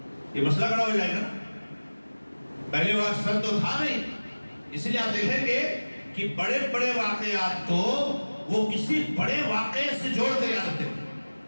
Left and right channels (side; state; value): both; inverted; correlation -1.00